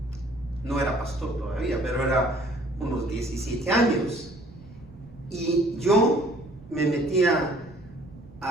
no era pastor todavía, pero era unos 17 años, y yo me metía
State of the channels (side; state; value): right; noise; rumble, 21 dB below the sound